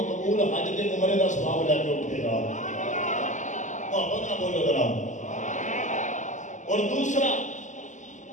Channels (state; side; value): late; right; 0.36 ms